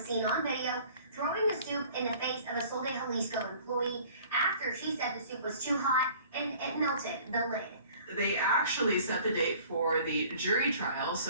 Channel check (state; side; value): inverted; both; correlation -0.50